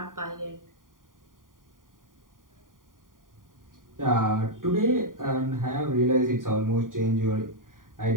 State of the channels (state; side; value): late; left; 0.90 ms